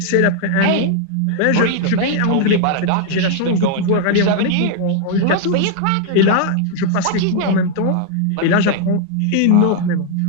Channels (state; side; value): different; both; correlation 0.00